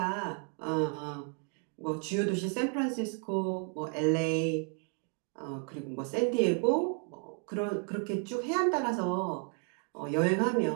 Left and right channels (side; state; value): left; quieter; 37.4 dB